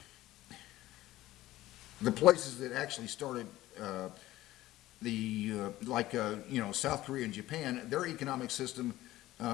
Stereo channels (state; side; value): quieter; right; 16.0 dB